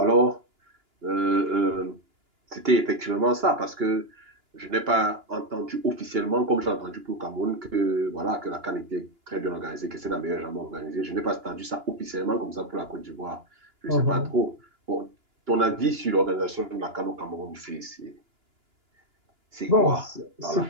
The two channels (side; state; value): left; late; 2.9 ms